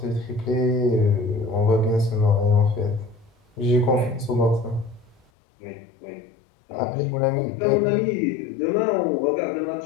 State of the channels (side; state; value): right; drops out; at 5.2 s